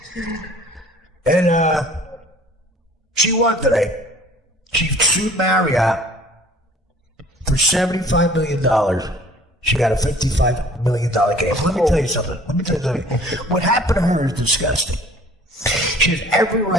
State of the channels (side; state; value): both; normal; correlation 0.51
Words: And she won today. She sued Marriott for $75 million. She got a $55 million case. Let me tell you something. What happened to her is disgusting. She has every